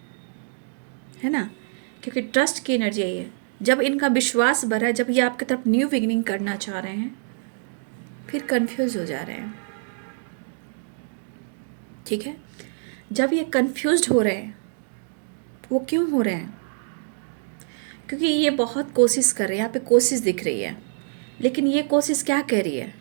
ना, क्योंकि ट्रस्ट की एनर्जी आई है। जब इनका विश्वास बढ़ा है, जब ये आपकी तरफ न्यू बिगिनिंग करना चाह रहे हैं, फिर कंफ्यूज हो जा रहे हैं। ठीक है, जब ये कंफ्यूज्ड हो रहे हैं, वो क्यों हो रहे हैं? क्योंकि ये बहुत कोशिश कर रहे हैं, यहाँ पे कोशिश दिख रही है, लेकिन ये कोशिश क्या कह रही है?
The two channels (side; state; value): left; silent; digital silence